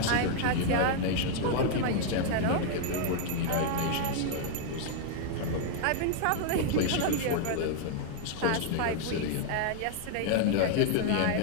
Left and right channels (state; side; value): different; both; correlation 0.00